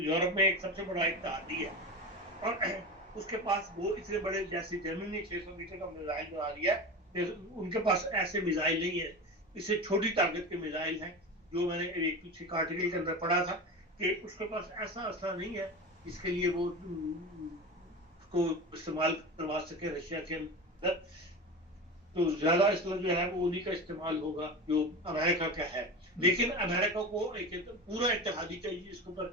यूरोप में एक सबसे बड़ा इत्तेहादी है और उसके पास वो इतने बड़े, जैसे जर्मनी 600 मीटर का मिसाइल बना दिया है, उनके पास ऐसे मिसाइल नहीं है। इससे छोटी ताकत के मिसाइल हैं। जो मैंने एक पीछे आर्टिकल के अंदर पढ़ा था कि उसके पास ऐसा असला नहीं है जिसके लिए वो उसको इस्तेमाल करवा सके रशिया के अंदर। तो ज्यादा असला जो है वो उन्हीं का इस्तेमाल होगा जो अमेरिका का है। लेकिन अमेरिका को एक पूरा इत्तेहादी चाहिए जिसके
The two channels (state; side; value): normal; both; correlation 0.27